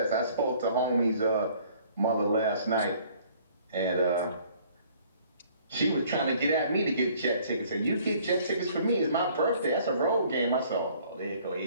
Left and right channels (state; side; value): inverted; both; correlation -0.57